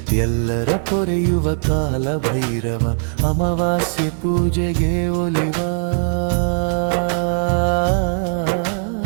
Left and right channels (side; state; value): left; silent; 59 dB below the other